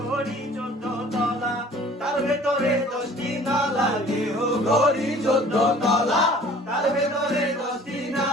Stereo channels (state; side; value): normal; both; correlation 0.50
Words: 14 তলা তার ভেতরে 10টি নালা দেহ গরি 14 তলা তার ভেতরে 10টি